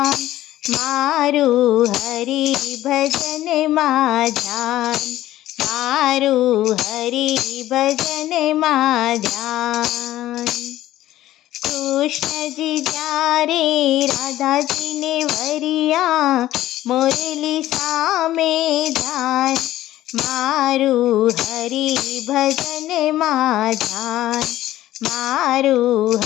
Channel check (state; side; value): quieter; right; 14.4 dB